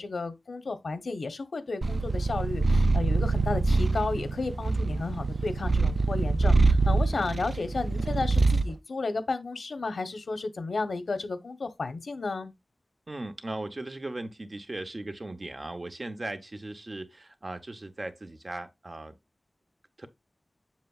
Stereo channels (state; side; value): normal; both; correlation 0.93